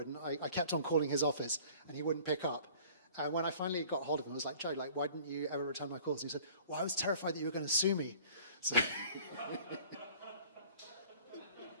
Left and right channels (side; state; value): both; inverted; correlation -0.50